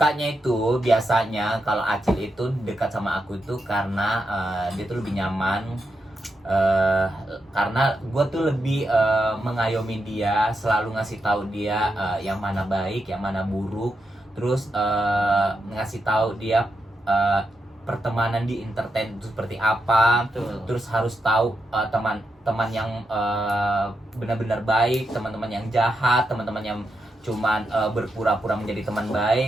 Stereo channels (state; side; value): normal; both; correlation 0.85